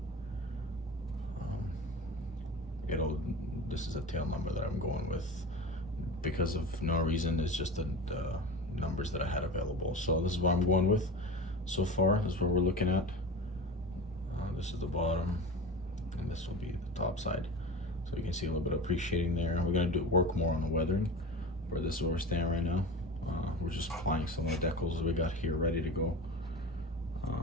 This is a tail number that I'm going with because of no reason. It's just the numbers that I had available. So this is what I'm going with so far. This is what we're looking at. This is the bottom, and this will be the top side. So you can see a little bit of appreciating there. We're gonna work more on the weathering, but this is where we're standing right now. We're just applying some of the decals we got here ready to go.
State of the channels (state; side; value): normal; both; correlation 0.30